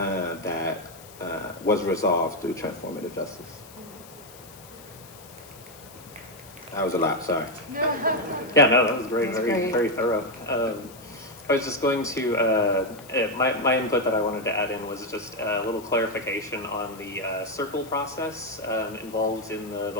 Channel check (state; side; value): noise; left; hiss, 20 dB below the sound